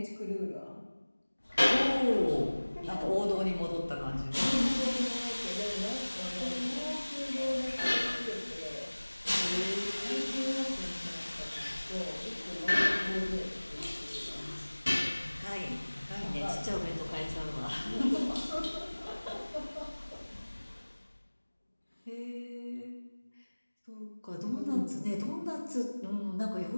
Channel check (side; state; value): both; inverted; correlation -1.00